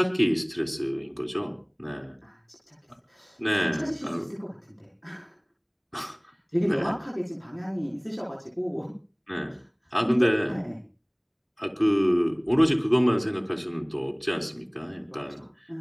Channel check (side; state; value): both; identical; correlation 1.00